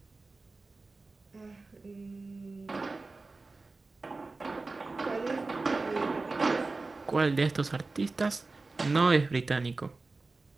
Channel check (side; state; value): left; quieter; 3.6 dB